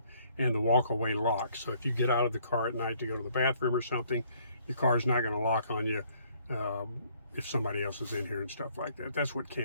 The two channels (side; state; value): both; inverted; correlation -0.64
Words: and the walk-away lock. So if you get out of the car at night to go to the bathroom or something, your car's not going to lock on you if somebody else is in here and stuff like that. That's what